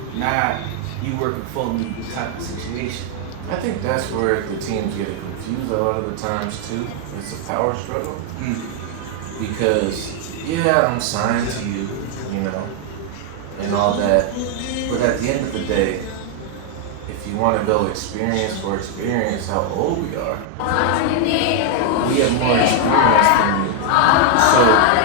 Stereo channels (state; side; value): different; both; correlation 0.00